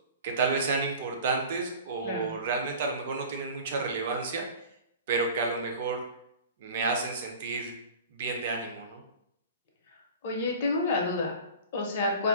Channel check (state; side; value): inverted; both; correlation -0.40